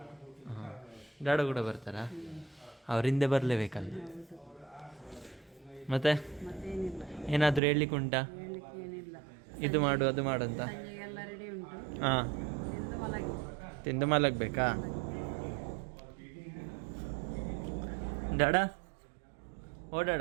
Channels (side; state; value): left; drops out; at 7.6 s